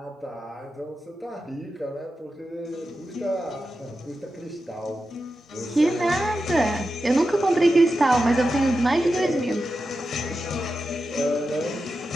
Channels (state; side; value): normal; both; correlation 0.91